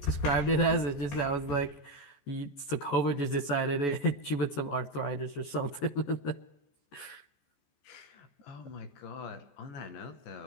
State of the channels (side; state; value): right; late; 14 ms